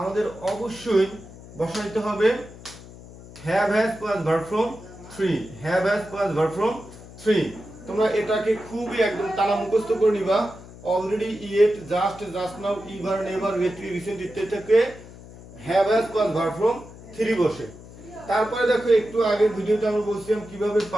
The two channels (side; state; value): left; noise; hum, 18 dB below the sound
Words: অবশ্যই বসাইতে হবে have has plus verb form three, have has plus verb form three. তোমরা এটাকে খুবই একদম টানা মুখস্থ করে নিবা। Already, yet, just, just now, ever, never, lately, recent ইত্যাদি থেকে have has plus verb form three বসে। তারপরে দেখো একটু আগের ভিডিওতে আমরা বলছিলাম কিভাবে